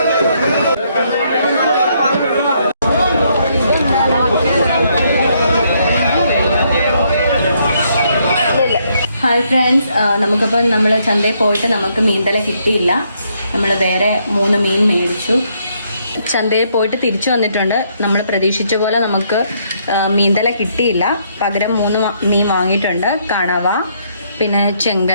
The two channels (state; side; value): inverted; both; correlation -0.72